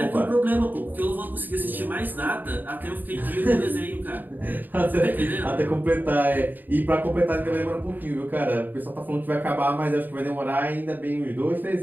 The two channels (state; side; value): late; left; 0.088 ms